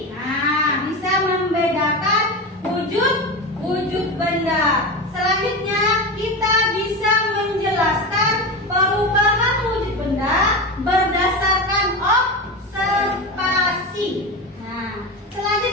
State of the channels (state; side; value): normal; both; correlation 0.22